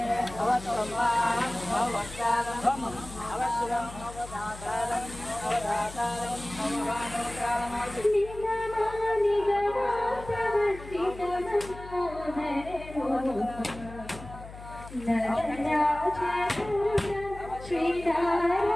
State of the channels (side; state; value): left; noise; hum, 15 dB below the sound